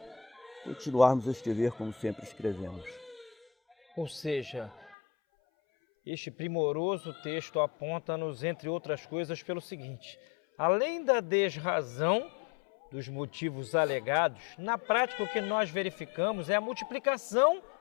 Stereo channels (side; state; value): right; drops out; at 5.0 s